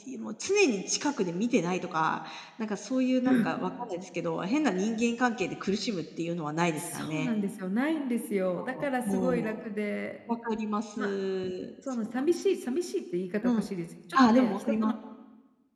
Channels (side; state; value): both; identical; correlation 1.00